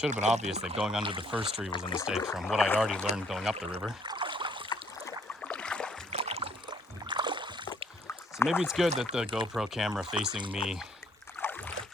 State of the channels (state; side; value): normal; both; correlation 0.64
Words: have been obvious that going under the first tree was a mistake from what I'd already learned going up the river. So maybe it's good that the GoPro camera facing me